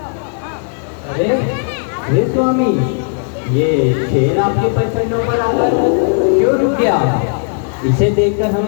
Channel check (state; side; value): silent; right; 55 dB below the other